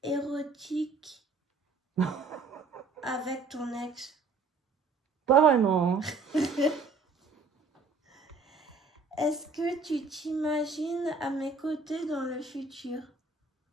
érotiques avec ton ex? Pas vraiment. Est-ce que tu t'imagines à mes côtés dans le futur?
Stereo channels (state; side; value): quieter; left; 4.0 dB